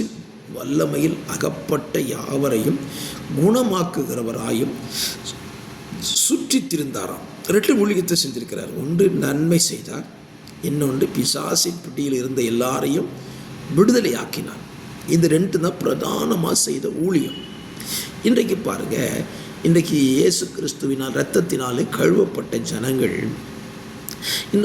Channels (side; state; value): both; identical; correlation 1.00